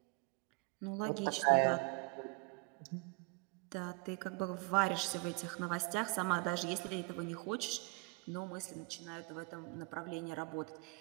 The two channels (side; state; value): left; quieter; 28.7 dB